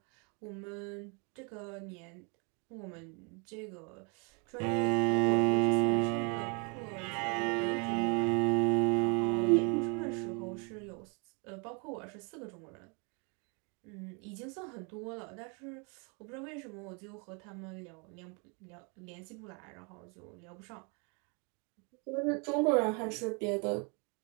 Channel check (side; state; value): left; quieter; 34.2 dB